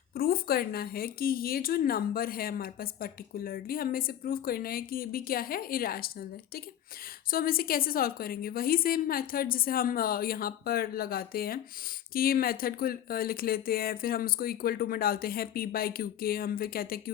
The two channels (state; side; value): quieter; right; 10.9 dB